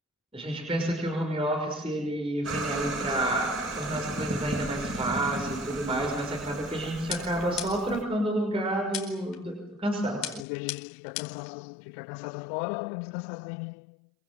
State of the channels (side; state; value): right; drops out; at 10.5 s